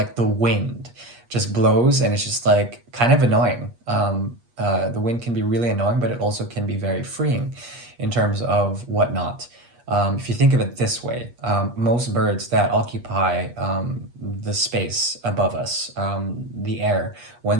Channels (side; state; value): left; late; 8.4 ms